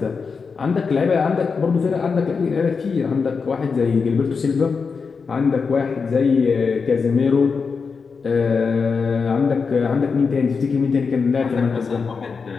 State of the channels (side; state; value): right; quieter; 5.2 dB